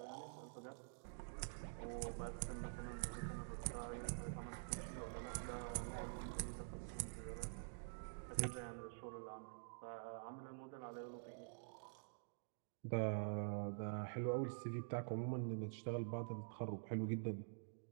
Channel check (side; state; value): left; silent; digital silence